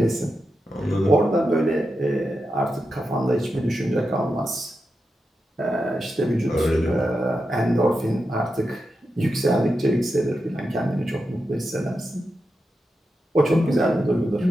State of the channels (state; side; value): normal; both; correlation 0.88